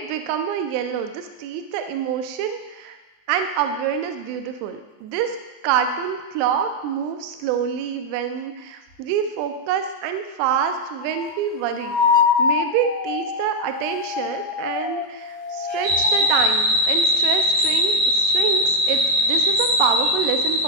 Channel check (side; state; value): left; late; 20 ms